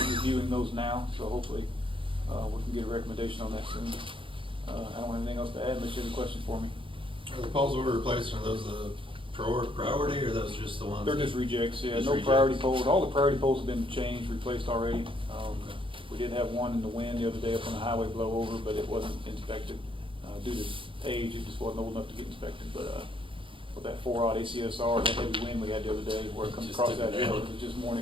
those now, so hopefully we can get a recommendation on that soon. I don't have anything else to add unless you have any questions for me. Are the poles we're replacing, are those the priority, or those just the ones? They're that- just rejects, yeah, Just no rejects? priority poles. All the priority poles have been changed, replaced already. We did have one in the wind the other day up on the highway blow over, but it wasn't inspected. Due to age, it just wasn't old enough to get inspected, but, with that 4-aught ACSR, that heavy wind we had the other day, where it comes Just across took that it hill, down. it was just more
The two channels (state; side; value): late; left; 0.25 ms